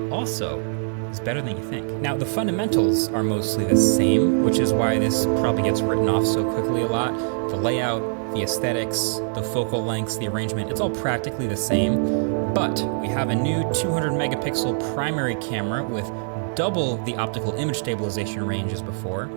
also is better than you think. Now, the fundamentals are mostly the same, which is why this probably gets written off so quickly a lot. The layout, the aesthetics, the focal lengths, the arrangement, it's all practically the same, but we have a new 200 megapixel primary camera with double the optical image stabilization range as before.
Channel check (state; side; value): silent; left; 63 dB below the other